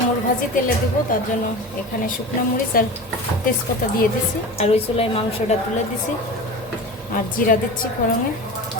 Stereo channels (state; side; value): normal; both; correlation 0.31